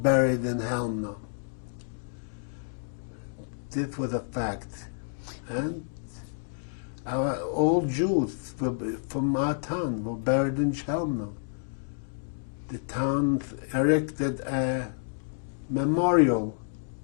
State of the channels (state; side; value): silent; right; digital silence